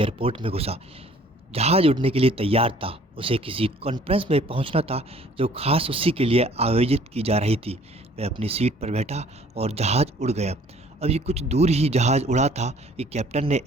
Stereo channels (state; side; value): normal; both; correlation 0.55